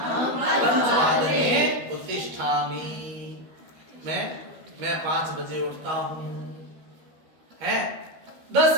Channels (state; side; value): late; left; 13 ms